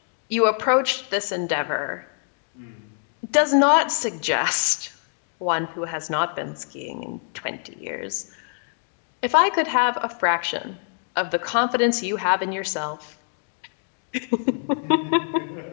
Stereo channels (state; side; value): silent; right; 56 dB below the other